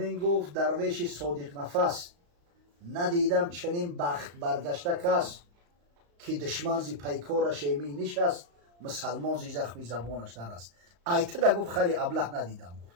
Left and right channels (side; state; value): left; late; 35 ms